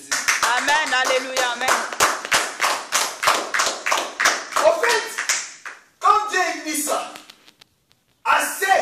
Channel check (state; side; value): identical; both; correlation 1.00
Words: Amen. Alléluia. Amen. En fait, quand Dieu dit ça, à ceux